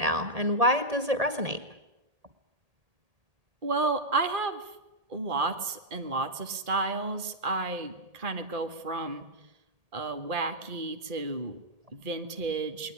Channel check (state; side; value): late; left; 1.8 ms